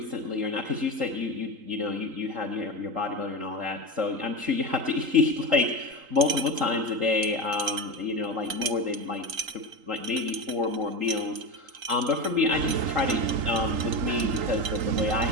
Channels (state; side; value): late; left; 3.8 ms